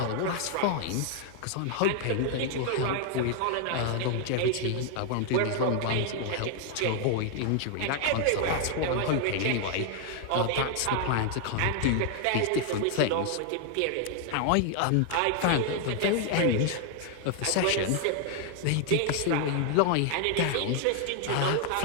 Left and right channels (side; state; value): both; different; correlation 0.00